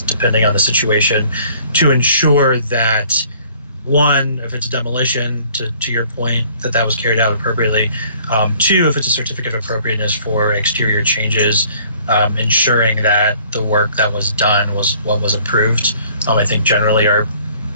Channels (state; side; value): inverted; both; correlation -0.56